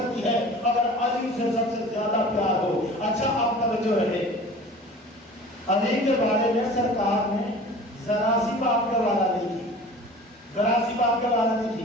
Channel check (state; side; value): normal; both; correlation 0.42